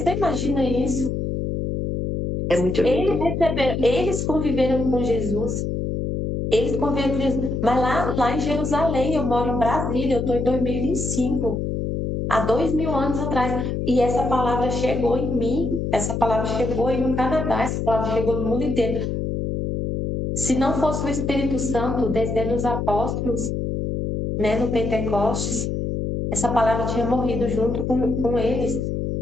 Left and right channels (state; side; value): noise; left; hum, 2 dB below the sound